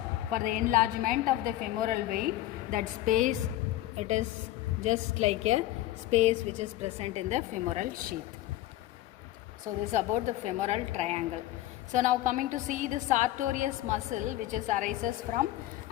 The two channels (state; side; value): quieter; right; 14.9 dB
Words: for the enlargement of the femoral vein, that space it is just like a space which is present in the femoral sheath. So this is about the femoral triangle. So now coming to see the sartorius muscle which is arises from